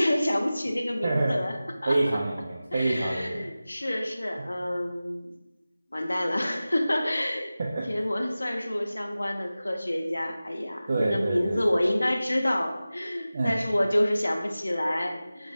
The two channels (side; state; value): both; inverted; correlation -0.96